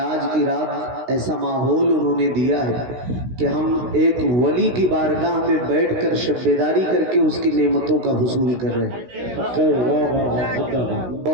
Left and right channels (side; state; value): left; late; 16 ms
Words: کی رات ایسا ماحول انہوں نے دیا ہے کہ ہم ایک ولی کی بارگاہ میں بیٹھ کر شب بیداری کر کے اس کی نعمتوں کا حصول کر رہے ہیں۔